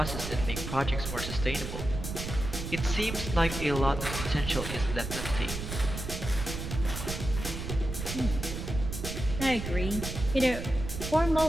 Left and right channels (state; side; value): noise; right; rumble, 6 dB below the sound